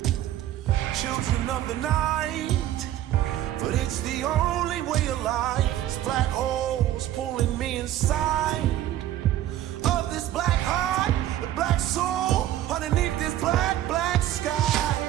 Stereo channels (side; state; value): left; quieter; 12.8 dB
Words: children of the night, but it's the only way of life. It's black holes pulling me inside of this black heart, the black soul underneath this black sky.